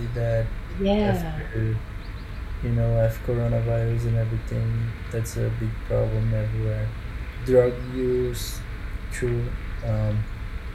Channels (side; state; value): both; identical; correlation 1.00